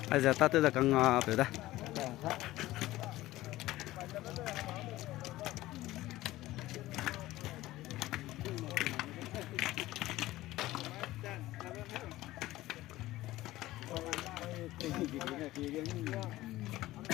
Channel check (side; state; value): right; quieter; 16.7 dB